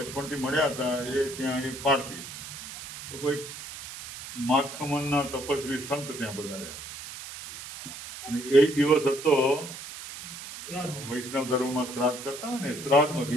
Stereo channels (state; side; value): noise; right; hiss, 11 dB below the sound